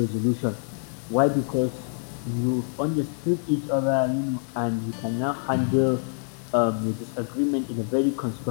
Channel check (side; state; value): right; silent; 60 dB below the other